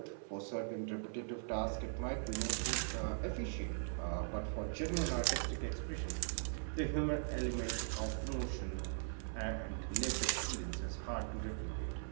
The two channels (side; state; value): left; silent; 51 dB below the other